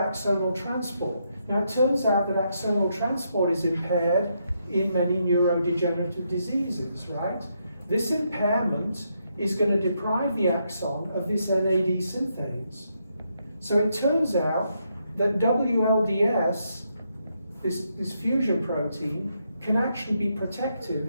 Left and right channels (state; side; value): inverted; both; correlation -0.79